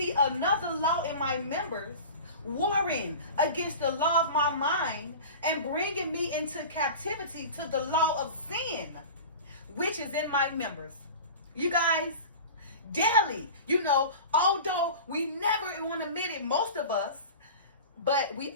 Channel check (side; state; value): both; inverted; correlation -0.35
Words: another law in my members, warring against the law of my mind and bringing me into captivity to the law of sin, which is in my members." You guys, daily, although we never want to admit it, most of us, but we